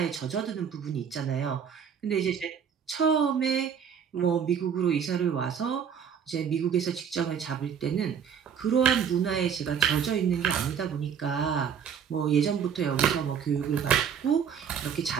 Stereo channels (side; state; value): left; quieter; 7.6 dB